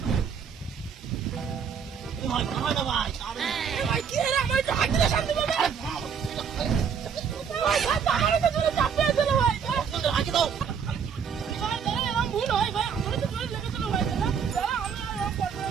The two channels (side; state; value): left; quieter; 7.0 dB